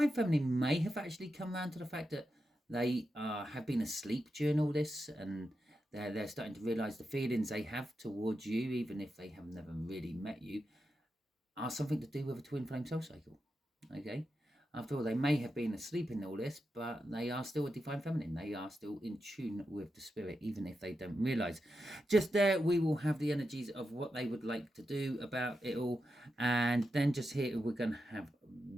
feminine may have actually come around to the fact that they have been asleep during all this, and they're starting to realize the feelings they have towards you, even if they have never really met you, are something to do with a twin flame soul cycle. Okay, after all, they may have been asleep in all this, but they are still a divine feminine. They are still in tune with the spirit, even if they don't realize. Just there, we will have the energies of what they would like to do about it all. And then just here, we're going to have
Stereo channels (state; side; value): normal; both; correlation 0.88